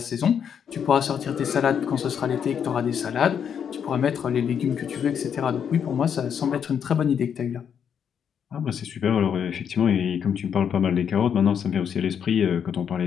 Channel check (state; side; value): quieter; right; 7.9 dB